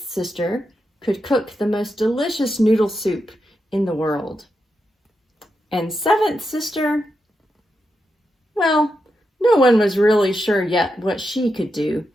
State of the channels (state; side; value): normal; both; correlation 0.86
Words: sister could cook the most delicious noodle soup in the world. And seventh sister, well, no one was really sure yet what she could do,